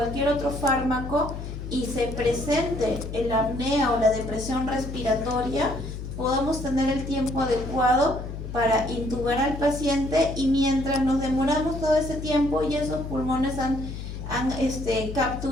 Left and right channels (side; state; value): left; noise; hum, 8 dB below the sound